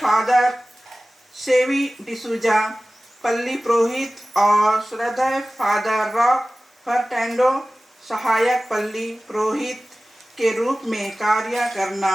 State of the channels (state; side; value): normal; both; correlation 0.97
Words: सेवी डिसूजा पल्ली पुरोहित और श्रद्धेय फादर रॉक फर्टेंडो सहायक पल्ली पुरोहित के रूप में कार्य करना